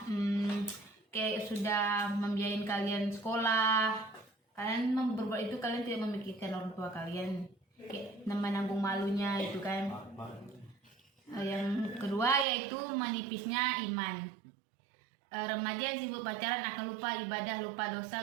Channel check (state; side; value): drops out; left; at 12.5 s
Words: sudah membiayain kalian sekolah. Kalian berbuat itu, kalian tidak memikirkan orang tua kalian, kayak menanggung malunya itu kan. Yang kedua yaitu menipisnya iman. Remaja yang sibuk pacaran akan lupa ibadah, lupa